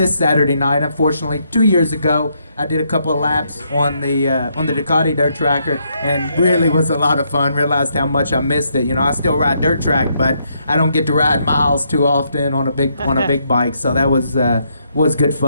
Saturday night. Unfortunately, 2 years ago I did a couple of laps on the Ducati dirt tracker, and really was a lot of fun. Realized how much I missed it. I still ride dirt track, but I don't get to ride miles too often on a big bike. So that was good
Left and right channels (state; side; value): inverted; both; correlation -0.75